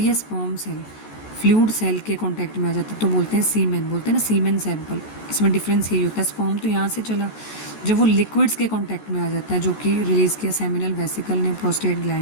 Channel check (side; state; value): right; late; 14 ms